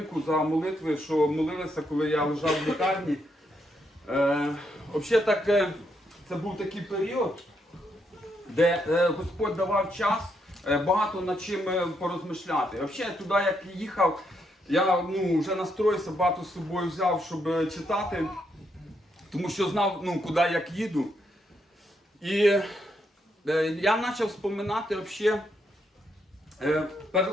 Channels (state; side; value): normal; both; correlation 0.78